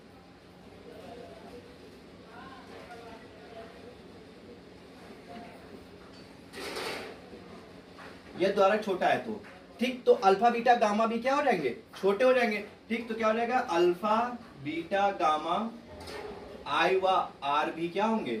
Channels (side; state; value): both; identical; correlation 1.00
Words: ये द्वारक छोटा है तो ठीक, तो अल्फा बीटा गामा भी क्या हो जाएंगे, छोटे हो जाएंगे। ठीक, तो क्या हो जाएगा, अल्फा बीटा गामा आई व आर भी क्या होंगे,